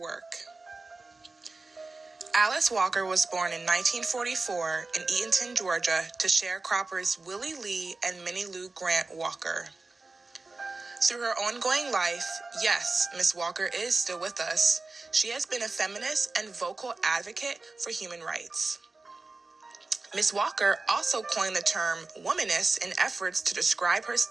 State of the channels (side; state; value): left; quieter; 3.6 dB